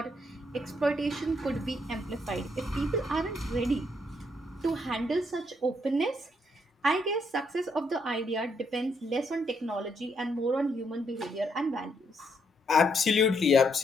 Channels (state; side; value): normal; both; correlation 0.74